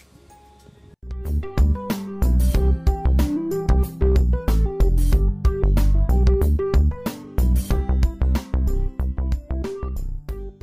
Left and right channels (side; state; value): both; identical; correlation 1.00